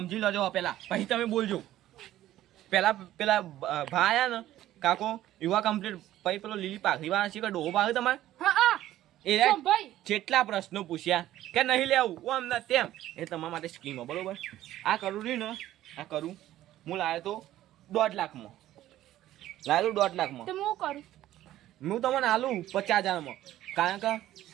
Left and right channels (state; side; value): quieter; left; 13.8 dB